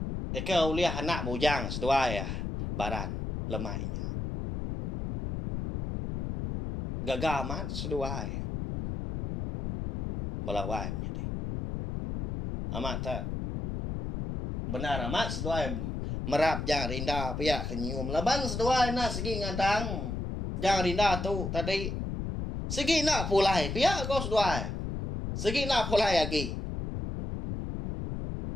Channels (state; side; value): noise; left; rumble, 4 dB below the sound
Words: Eka uliah anak bujang sedua ya. Baran lemainya. Gagal amat sedua ya. Melawai menjadi. Amat tak. Benar amat sedua ya. Merap jangan rinda pihak kenyum. Laban sedua na segi ngadang. Jangan rinda tu tadi. Segi nak pulai pihak kau sedua. Segi nak pulai lagi.